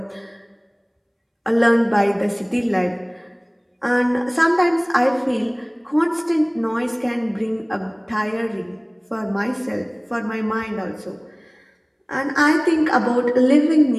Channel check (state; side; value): identical; both; correlation 1.00